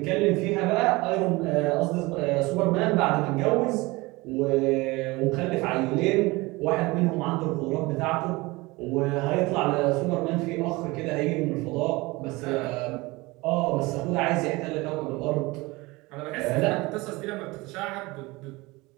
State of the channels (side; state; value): left; quieter; 22.7 dB